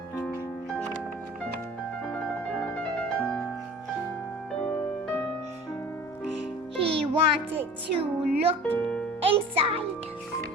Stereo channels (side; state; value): both; normal; correlation 0.43